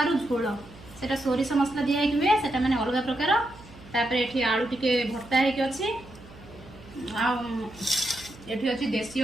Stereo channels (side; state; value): right; noise; hum, 20 dB below the sound